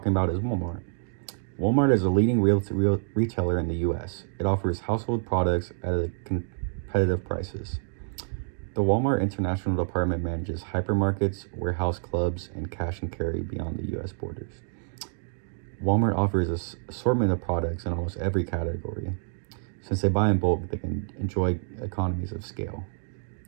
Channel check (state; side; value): silent; left; digital silence